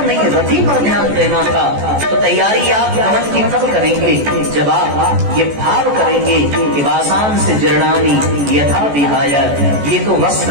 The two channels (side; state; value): left; late; 14 ms